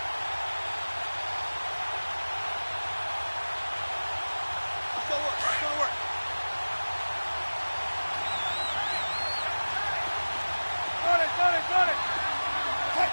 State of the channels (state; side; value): inverted; both; correlation -1.00